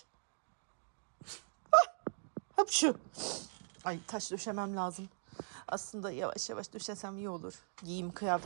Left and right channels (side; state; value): left; silent; digital silence